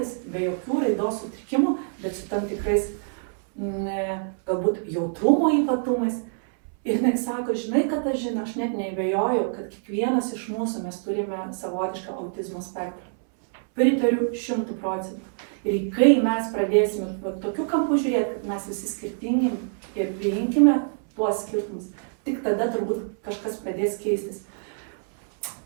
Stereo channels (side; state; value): left; silent; 61 dB below the other